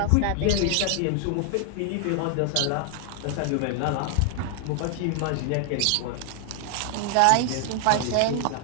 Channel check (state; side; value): different; both; correlation 0.00